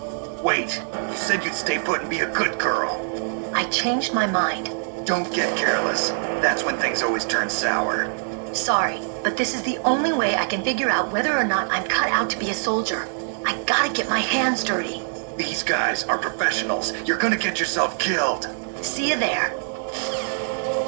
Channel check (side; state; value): left; silent; digital silence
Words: Wait, you said you'd stay put and be a good girl. I changed my mind. Don't get careless. That's when things always turn sour. Sorry, but this is the only way I can figure out whether or not I'm cut out to be a soldier. I gotta get my hands dirty. These guys are professionals. You're gonna get yourself killed. See you there.